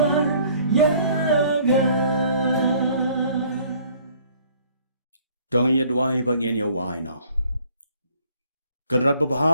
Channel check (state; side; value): inverted; both; correlation -0.58